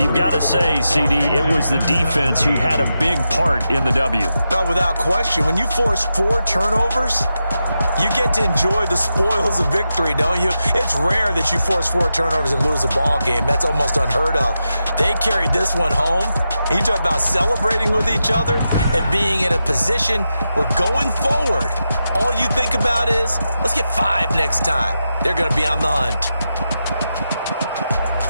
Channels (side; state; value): both; inverted; correlation -0.88